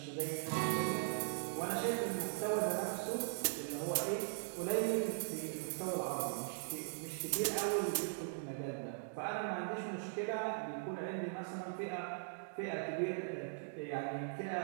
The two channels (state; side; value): silent; left; digital silence